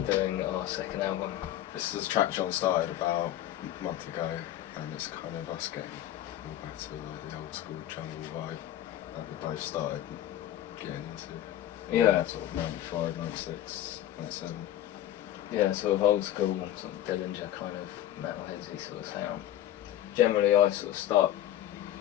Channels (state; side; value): quieter; right; 12.7 dB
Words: doing our second album. This is a track John started about a month ago, and it's kind of us getting all back to like the old school jungle vibe that we both started getting into. Yeah. Sort of 95, 96, 97. Yeah, sort of old school, sort of Dillinger kind of metalheadsy sort of sound. Generally I sort of start